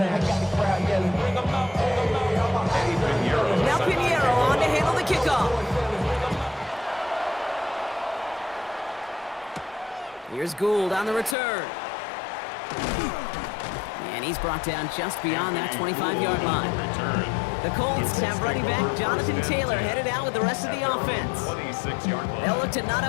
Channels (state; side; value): drops out; right; at 11.4 s